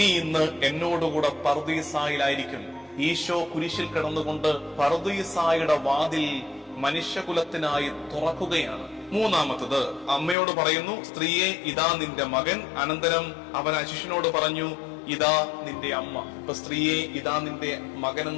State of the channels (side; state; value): right; drops out; at 10.4 s